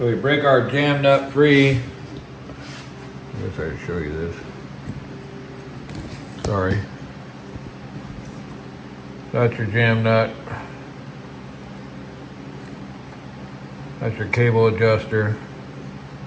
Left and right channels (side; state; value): both; identical; correlation 1.00